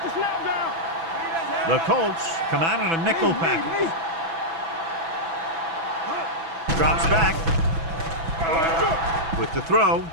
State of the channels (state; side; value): late; left; 6.1 ms